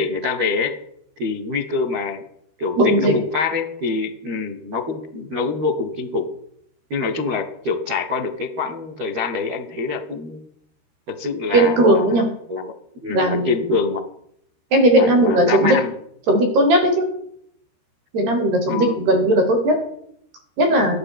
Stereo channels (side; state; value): left; late; 13 ms